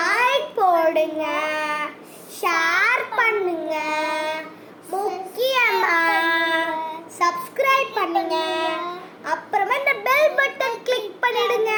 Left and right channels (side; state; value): both; identical; correlation 1.00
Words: போடுங்க, ஷேர் பண்ணுங்க, முக்கியமா சப்ஸ்கிரைப் பண்ணுங்க. அப்புறமா இந்த பெல் பட்டன் கிளிக் பண்ணிடுங்க.